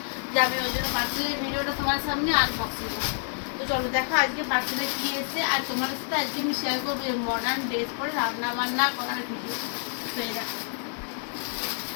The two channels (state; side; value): silent; right; 59 dB below the other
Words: যে আমি ওই জন্য পার্সেলের ভিডিওটা তোমার সামনে আনবক্সিং করছি। তো চলো দেখো আজকে পার্সেলে কি এসেছে, আর তোমার সাথে আজকে আমি শেয়ার করবো মডার্ন ড্রেস পরে রান্না বান্না করার ভিডিও। তো এই দেখো,